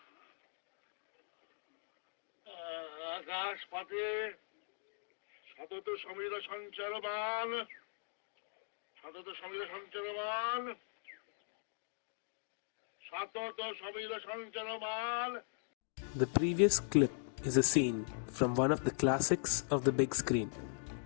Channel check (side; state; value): right; silent; digital silence